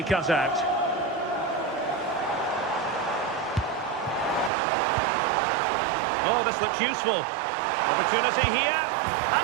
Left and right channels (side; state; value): left; drops out; at 4.5 s